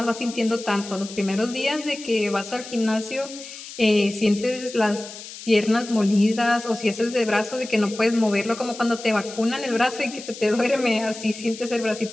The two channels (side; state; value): left; noise; hiss, 13 dB below the sound